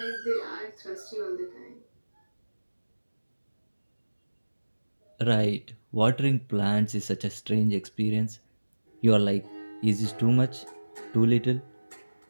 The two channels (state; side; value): inverted; both; correlation -1.00